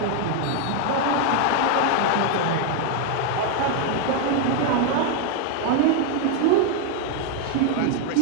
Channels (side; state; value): both; different; correlation 0.01